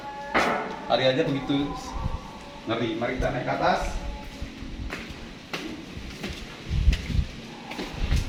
Hari aja begitu ngeri. Mari kita naik ke atas.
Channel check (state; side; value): identical; both; correlation 1.00